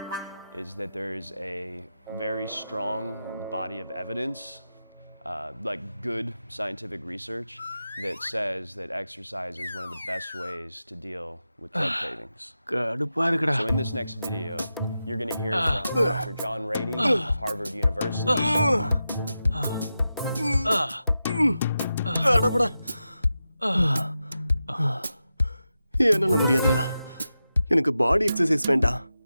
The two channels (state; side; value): inverted; both; correlation -0.91